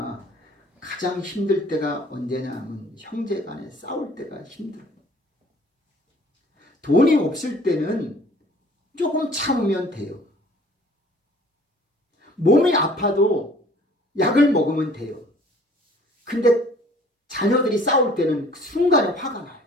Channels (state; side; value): normal; both; correlation 0.53